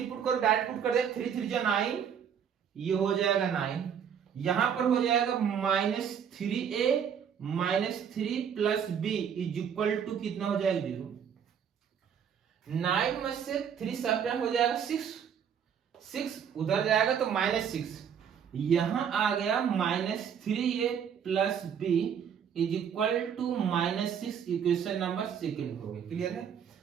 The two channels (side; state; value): left; quieter; 7.9 dB